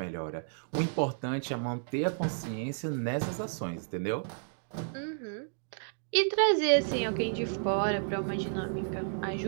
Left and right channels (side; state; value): left; silent; digital silence